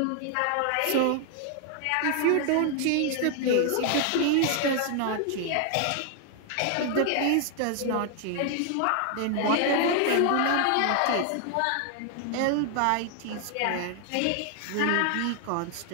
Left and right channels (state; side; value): different; both; correlation 0.00